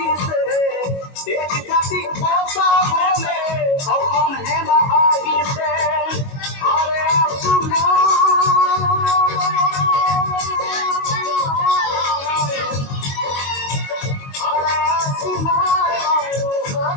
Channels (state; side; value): late; right; 22 ms